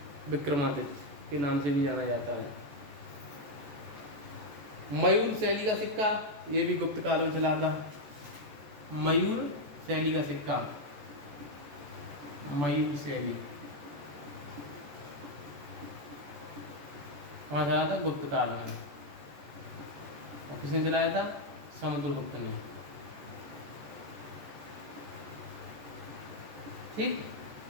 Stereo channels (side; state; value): left; late; 14 ms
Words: विक्रमादित्य के नाम से भी जाना जाता है। मयूर शैली का सिक्का, ये भी गुप्त काल में चला था। मयूर शैली का सिक्का, मयूर शैली वहाँ चला था गुप्त काल में। और किसने चलाया था? समुद्रगुप्त ने। ठीक,